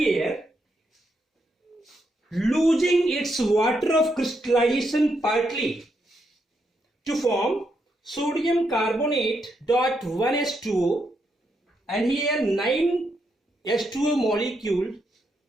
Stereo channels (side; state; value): both; normal; correlation 0.80